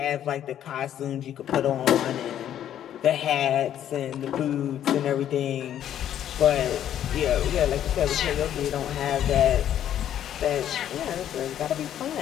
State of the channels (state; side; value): quieter; right; 10.7 dB